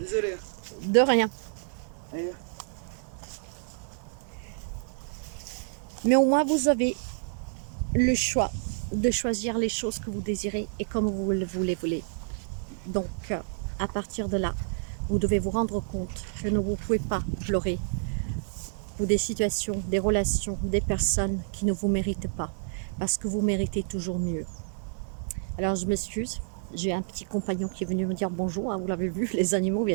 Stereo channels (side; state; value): left; silent; 59 dB below the other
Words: De rien. Allez. Mais au moins, vous avez le choix de choisir les choses que vous désirez et comme vous le voulez. Donc, à partir de là, vous devez vous rendre compte que vous ne pouvez pas pleurer pour des situations, des relations, des personnes qui ne vous méritent pas, parce que vous méritez toujours mieux. Alors, je m'excuse, J'ai un petit compagnon qui est venu me dire bonjour, hein, vous l'avez vu, les animaux